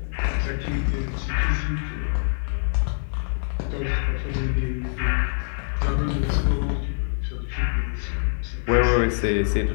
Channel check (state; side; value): silent; right; 61 dB below the other